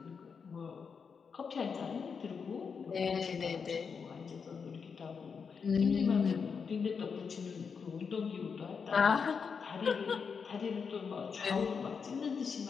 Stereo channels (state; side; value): quieter; right; 5.9 dB